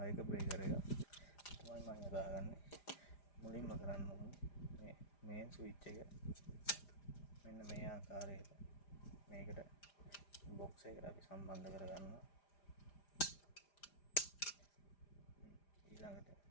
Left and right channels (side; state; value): right; late; 5.0 ms